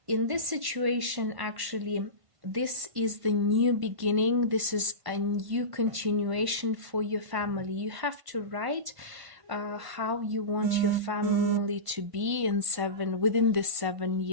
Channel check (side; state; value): left; late; 1.1 ms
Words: in this situation. Actually, this is the new beginning, this is a new continuation for your family. You have to write how you want your family to be within the 7